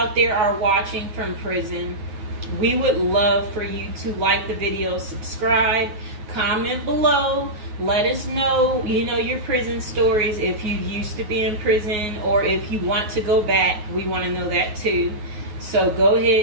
there are watching from prison, we would love for you to like the video, subscribe, comment below, let us know, your prison stories. If you used to be in prison or if you want to go back, we want to know that too. So go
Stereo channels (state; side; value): late; left; 9.4 ms